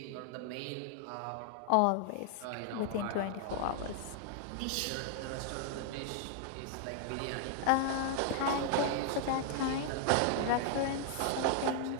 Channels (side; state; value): both; different; correlation 0.00